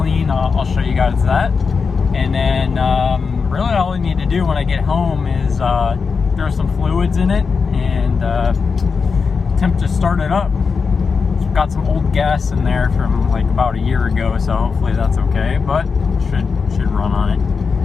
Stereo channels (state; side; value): quieter; right; 5.2 dB